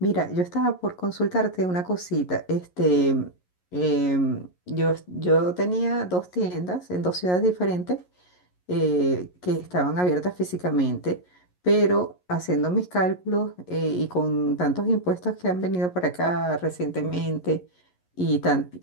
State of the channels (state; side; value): late; right; 11 ms